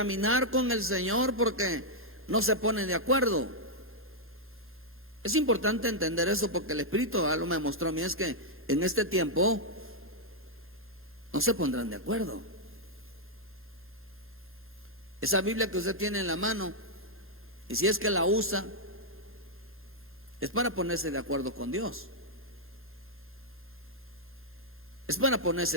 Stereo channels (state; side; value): normal; both; correlation -0.04